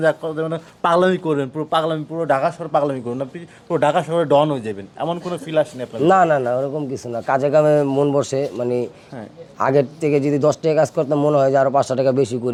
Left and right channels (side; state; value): both; identical; correlation 1.00